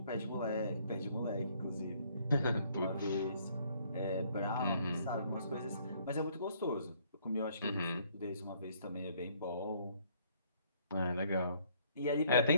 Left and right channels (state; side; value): inverted; both; correlation -0.64